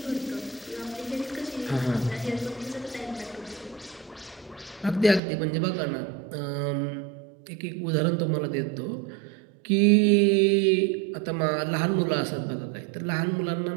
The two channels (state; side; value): drops out; left; at 5.2 s